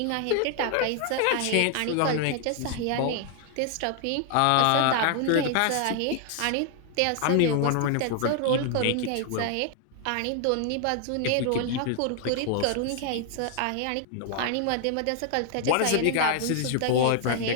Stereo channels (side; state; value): both; different; correlation 0.00